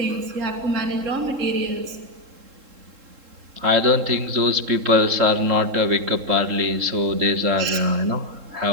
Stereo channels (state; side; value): late; left; 3.7 ms